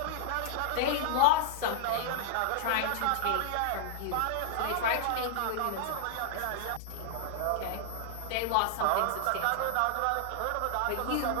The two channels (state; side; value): different; both; correlation 0.00